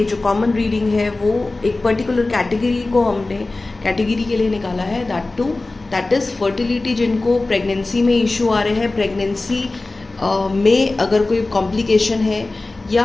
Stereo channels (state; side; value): quieter; right; 3.2 dB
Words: जो common reading है वो एक particular category को हमने category के लिए निकाला है, that is fertility जिनको pregnancy में issue आ रहे हैं, pregnancy में अगर कोई complication है